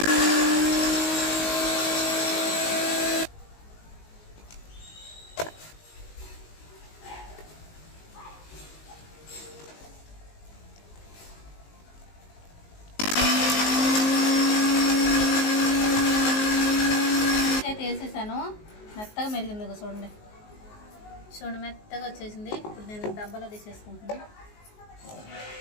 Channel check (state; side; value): late; right; 19 ms